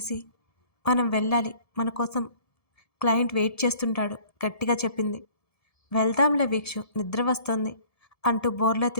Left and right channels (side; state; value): right; late; 1.7 ms